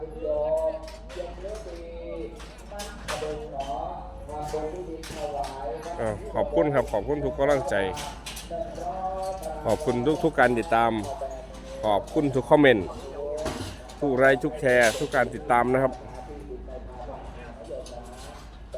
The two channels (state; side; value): identical; both; correlation 1.00